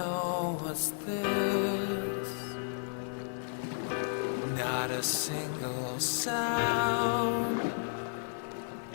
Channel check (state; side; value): silent; right; 56 dB below the other